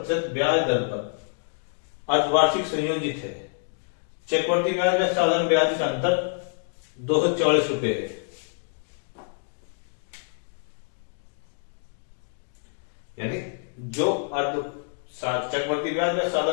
ब्याज दर पर अर्धवार्षिक संयोजित है। चक्रवर्ती ब्याज में साधारण ब्याज का अंतर 244 रुपए है। यानी जो चक्रवर्ती ब्याज में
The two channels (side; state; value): right; silent; digital silence